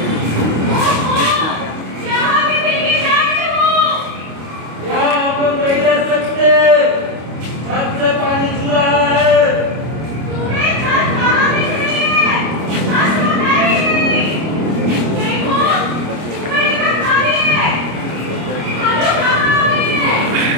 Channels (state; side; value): late; left; 25 ms